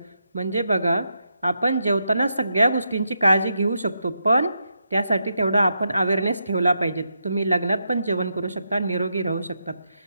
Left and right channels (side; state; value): both; inverted; correlation -0.83